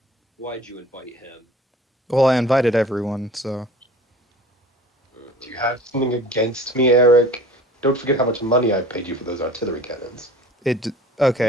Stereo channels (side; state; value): both; normal; correlation 0.43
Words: Why'd you invite him? Well, I invited everyone, so Do you have something against me, Eric? Don't forget how much money I paid you for those artillery cannons. it.